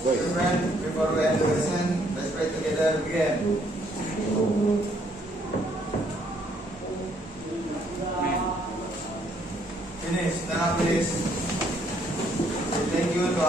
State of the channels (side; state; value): both; normal; correlation 0.68